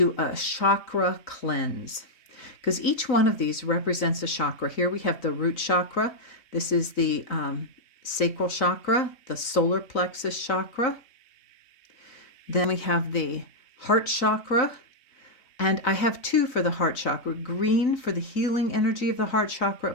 a chakra cleanse, because each one of these represents a chakra. Here we have the root chakra. This is the sacral chakra, the solar plexus chakra. Then we have the heart chakra, and I have 2 for the heart chakra: green for the healing energy of the heart chakra,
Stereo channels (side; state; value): right; late; 3.9 ms